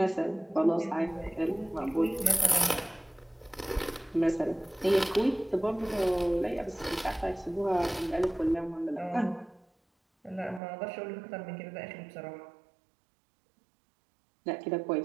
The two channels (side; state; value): left; drops out; at 10.6 s